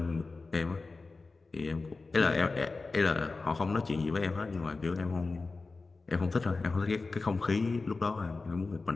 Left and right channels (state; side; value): quieter; right; 3.8 dB